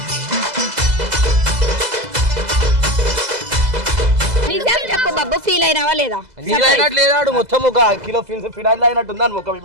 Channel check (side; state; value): left; late; 2.0 ms